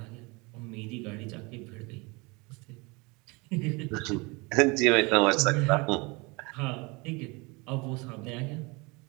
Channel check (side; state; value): left; quieter; 27.0 dB